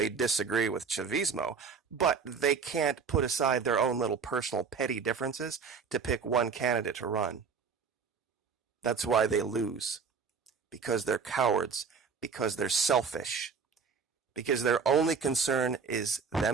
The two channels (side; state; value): left; quieter; 5.7 dB